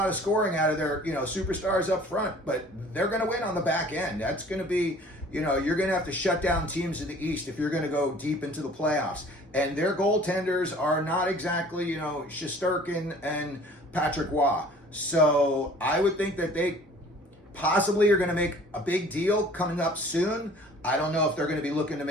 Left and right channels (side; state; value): both; normal; correlation 0.50